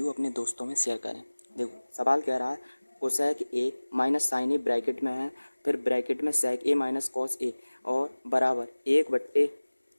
अपने दोस्तों में शेयर करें। देखो सवाल कह रहा है cosec A minus sine A bracket में है, फिर ब्रैकेट में सेक ए माइनस कॉस ए और बराबर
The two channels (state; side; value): inverted; both; correlation -1.00